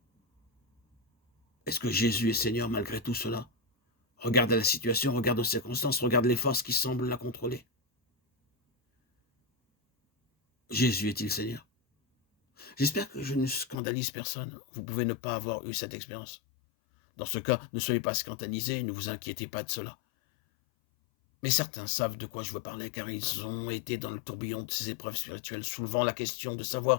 Est-ce que Jésus est Seigneur malgré tout cela? Regarde la situation, regarde aux circonstances, regarde les forces qui semblent la contrôler. Jésus est-il Seigneur? J'espère que je ne scandalise personne. Vous pouvez ne pas avoir eu cette expérience. Dans ce cas, ne soyez pas scandalisés, ne vous inquiétez pas de cela. Mais certains savent de quoi je veux parler, car ils ont été dans le tourbillon de ces épreuves spirituelles, soulevant la question de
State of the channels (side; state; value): right; drops out; at 13.8 s